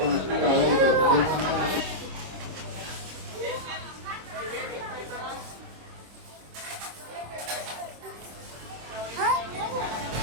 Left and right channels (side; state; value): left; late; 26 ms